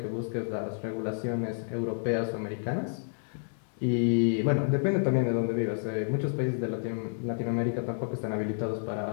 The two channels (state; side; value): silent; right; digital silence